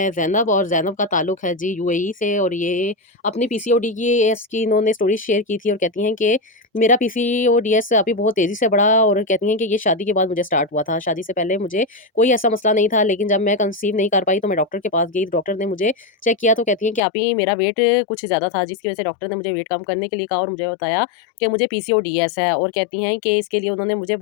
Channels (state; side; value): drops out; right; at 17.0 s